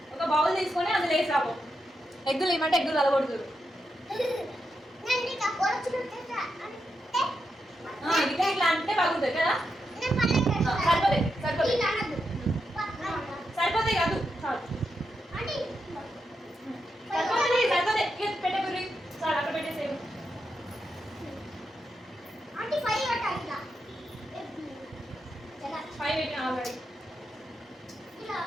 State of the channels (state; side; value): normal; both; correlation 0.85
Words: ఒక బౌల్ తీసుకొని అందులో వేసాము. ఎగ్గులు ఏమంటే ఎగ్గులు అలగొడుతురు. ఇట్లా ఇట్లా అంటే బాగుంటుంది కదా. సరిపోతాయి సరిపోతాయి సరిపోతాయి కాదు చాలు. సరిపోతుంది సరిపోతాయి. పెట్టే గురి చాలు, అక్కడ పెట్టేసేవు. ఫైవ్ పెట్టిన ఆల్రెడీ.